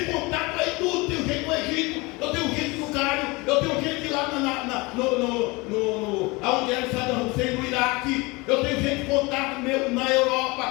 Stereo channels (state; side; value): quieter; right; 24.9 dB